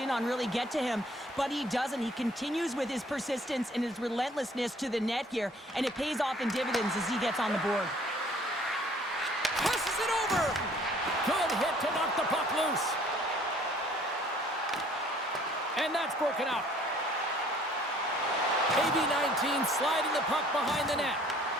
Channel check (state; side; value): normal; both; correlation 0.57